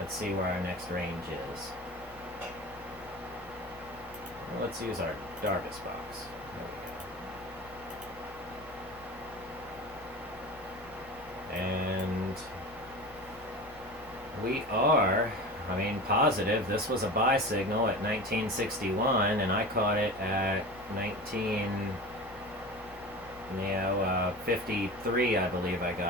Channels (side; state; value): both; normal; correlation 0.32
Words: Let's see where our next range is. Well, let's use our Darvis box. There we go. And we are, positive. This was a buy signal at 1961, and I caught it at 53, I believe I